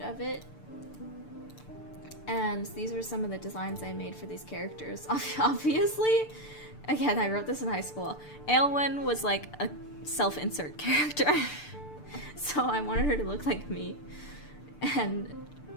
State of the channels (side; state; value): right; late; 6.8 ms